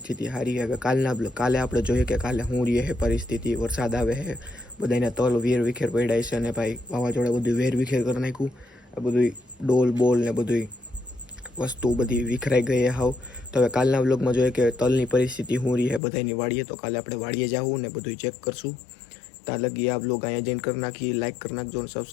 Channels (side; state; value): right; drops out; at 16.0 s